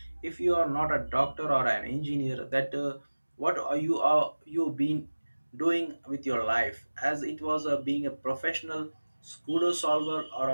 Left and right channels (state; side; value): inverted; both; correlation -1.00